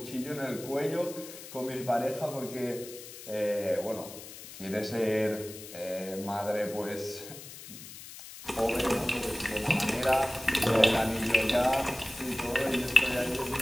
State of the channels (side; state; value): left; noise; hiss, 14 dB below the sound